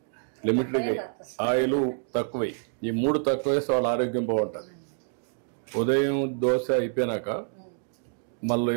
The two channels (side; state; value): left; silent; digital silence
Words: లిమిట్, ఆయిల్ తక్కువై. ఈ 3 తక్కువ వేస్తే వాళ్ళ ఆరోగ్యం బాగుంటుంది. ఉదయం దోశ అయిపోయినాక మళ్ళీ